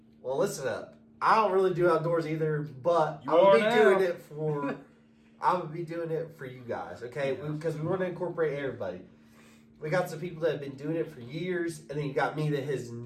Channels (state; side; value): identical; both; correlation 1.00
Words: Well, listen up. I don't really do outdoors either, but I'm gonna be doing it for you guys, okay? Because we want to incorporate everybody. We got some people that have been doing it for years, and then you got me that has